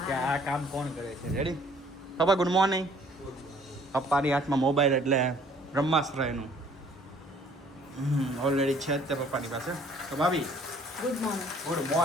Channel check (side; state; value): both; normal; correlation 0.57